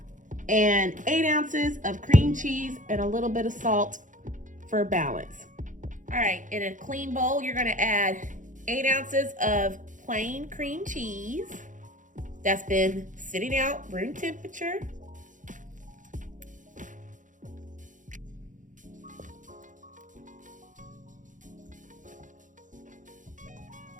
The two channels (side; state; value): left; late; 0.37 ms